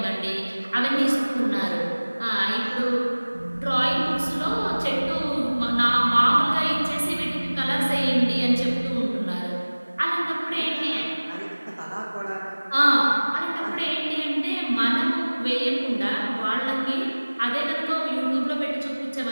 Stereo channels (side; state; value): both; inverted; correlation -1.00